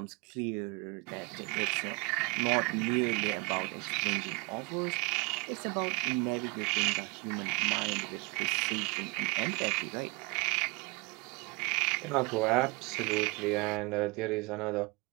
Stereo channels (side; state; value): left; quieter; 27.4 dB